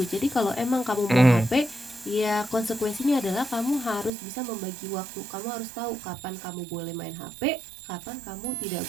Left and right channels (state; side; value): drops out; left; at 4.1 s